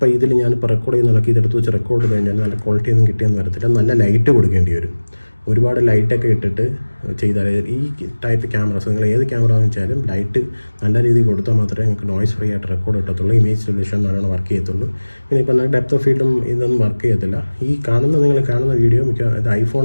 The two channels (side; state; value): both; inverted; correlation -1.00